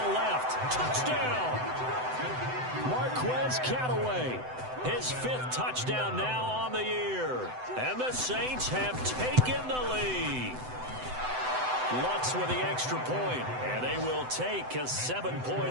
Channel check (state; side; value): late; left; 7.9 ms